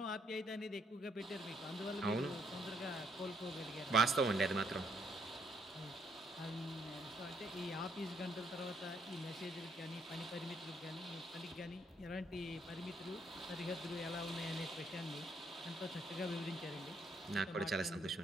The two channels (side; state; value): both; normal; correlation 0.71